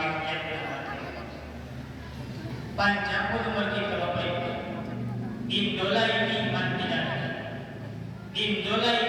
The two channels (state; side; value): identical; both; correlation 1.00